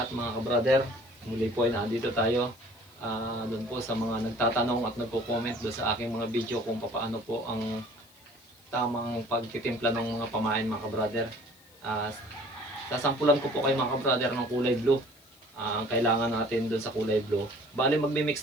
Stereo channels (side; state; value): left; noise; hiss, 27 dB below the sound